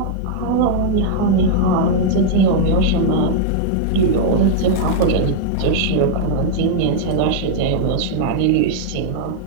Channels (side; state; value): both; different; correlation -0.01